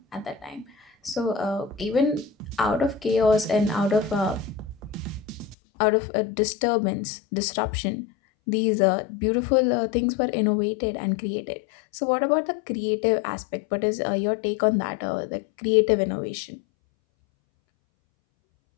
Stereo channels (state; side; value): drops out; right; at 5.6 s